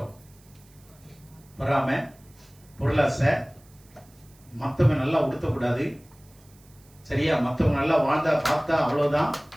பொறாமை, பொருளாசை, மத்தவங்க நல்லா உடுத்தக்கூடாது, சரியா? மத்தவங்க நல்லா வாழ்ந்தா பார்த்தா அவ்வளவுதான்.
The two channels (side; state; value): right; noise; hiss, 29 dB below the sound